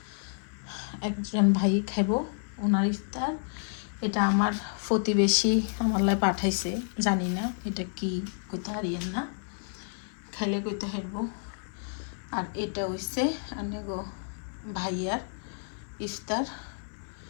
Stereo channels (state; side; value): silent; right; 58 dB below the other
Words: একজন ভাই খাইব, ওনার ইফতার, এটা আমার প্রতিবেশী আমার লাই পাঠাইছে, জানি না এটা কি, কইতে হারিয়েন না, খাইলে কইতে হারব। আর এটা হইছে আনে গো ভাইয়ার ইফতার।